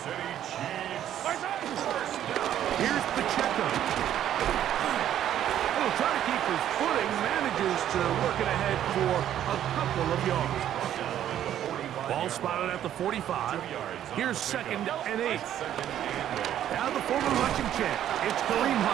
Here's Pacheco. He'll try to keep his footing, manages to work it ahead for a couple of yards. Ball spotted at the 45. Here's second and 8. Now the former rushing champ, it's Kareem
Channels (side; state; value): left; quieter; 11.1 dB